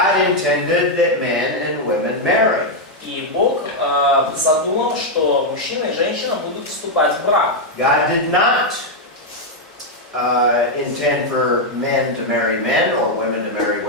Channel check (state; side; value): normal; both; correlation 0.00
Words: intended that men and women marry. И Бог задумал, что мужчина и женщина будут вступать в брак. God did not intend for men to marry men or women to marry